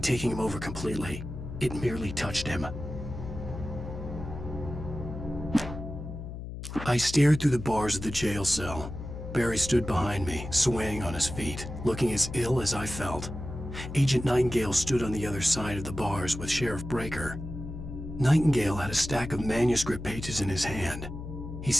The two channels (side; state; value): left; noise; hum, 9 dB below the sound